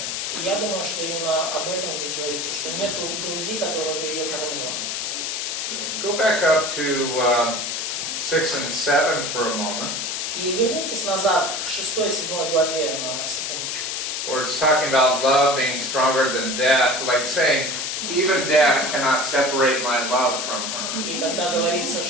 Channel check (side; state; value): left; noise; hiss, 2 dB below the sound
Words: И я думаю, что именно об этом здесь говорится, что нету груди, которая бы ее кормила. Go back up to 6 and 7 for a moment, И вернитесь назад к 6-7 главе на секундочку. where it's talking about love being stronger than death, like saying, even death cannot separate my love from her. И когда говорится,